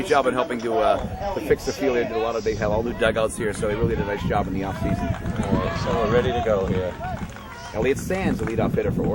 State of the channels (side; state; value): both; identical; correlation 1.00